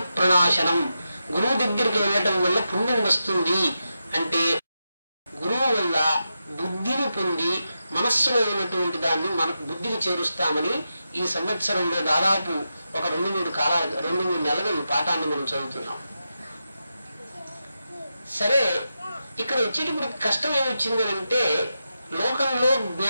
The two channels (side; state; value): both; inverted; correlation -0.88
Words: ప్రణాశనం. గురువు దగ్గరికి వెళ్ళటం వల్ల పుణ్యం వస్తుంది. అంటే గురువు వల్ల బుద్ధిని పొంది మనస్సులో ఉన్నటువంటి దాన్ని మనకు బుద్ధికి చేరుస్తామని ఈ సంవత్సరంలో దాదాపు ఒక 2-3 నెలలు ఈ పాఠాన్ని మనం చదువుతున్నాం. సరే, ఇక్కడ వచ్చేటప్పుడు కష్టం ఏమొచ్చింది అంటే లోకంలో